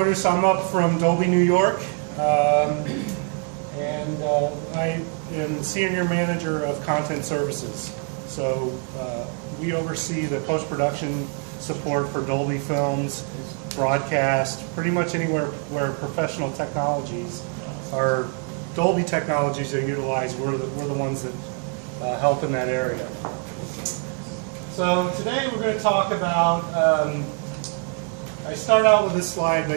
I'm up from Dolby, New York, and I am the senior manager of content services. So we oversee the post-production support for Dolby films, broadcast, pretty much anywhere where professional technologies or Dolby technologies are utilized. We're the ones that help in that area. So today we're going to talk about, I start out with this slide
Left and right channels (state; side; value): quieter; left; 39.9 dB